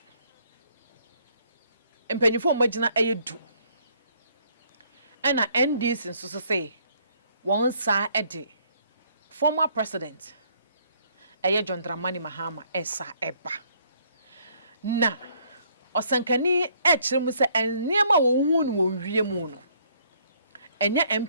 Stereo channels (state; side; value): inverted; both; correlation -0.65